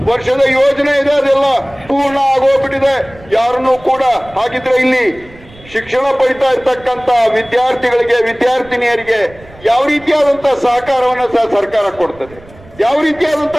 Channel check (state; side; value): noise; right; rumble, 23 dB below the sound